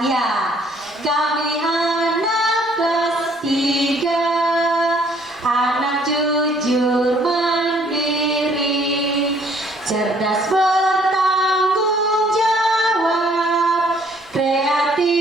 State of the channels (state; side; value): normal; both; correlation 0.61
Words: ya. Kami anak kelas 3, anak jujur mandiri, cerdas bertanggung jawab,